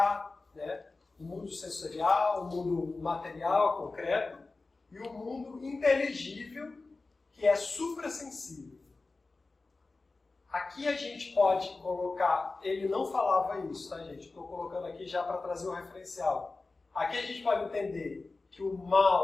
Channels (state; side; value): quieter; right; 3.6 dB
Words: né? O mundo sensorial, o mundo material, concreto, e o mundo inteligível, que é suprassensível. Aqui a gente pode colocar, ele não falava isso, tá, gente? Estou colocando aqui já para trazer um referencial. Aqui a gente pode entender que o